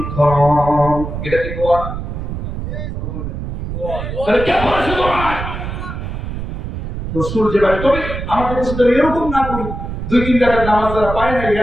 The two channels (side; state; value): right; noise; rumble, 6 dB below the sound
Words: ইকরাম। এটা কি দোয়া? তাহলে কে বলেছে দোয়া? রাসূল যেভাবে। তবে আমাদের দেশে তো এরকম না করি, দুই তিন রাকাত নামাজ যারা পায় না